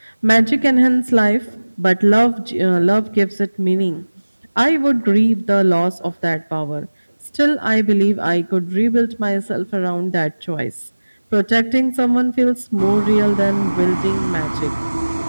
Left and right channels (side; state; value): both; inverted; correlation -1.00